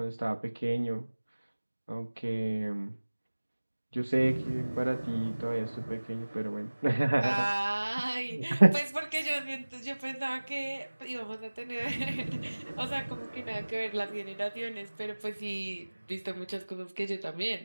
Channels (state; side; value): inverted; both; correlation -1.00